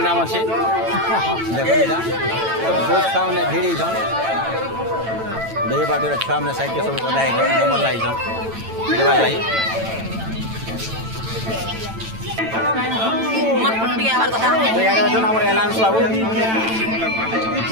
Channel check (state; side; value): late; left; 9.0 ms